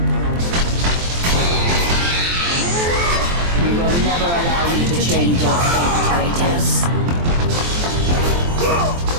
Never allow you to change your fate, Kratos.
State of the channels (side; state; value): left; late; 23 ms